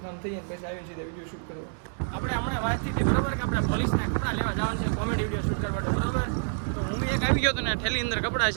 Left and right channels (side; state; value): left; silent; digital silence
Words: કામ થઈ જાય પછી આવીને સીધા વિડીયો શૂટ કરવા. આપણે હમણાં વાત થઈ હતી, બરોબર, કે આપણે પોલીસના કપડાં લેવા જવાનું છે કોમેડી વિડીયો શૂટ કરવા, બરોબર? તો હું એક આવી ગયો હતો ને, ઠેલી અંદર કપડાં